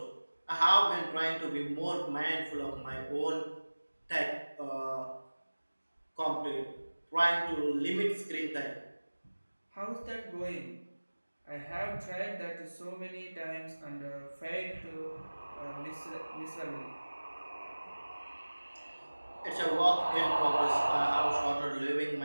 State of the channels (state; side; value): inverted; both; correlation -1.00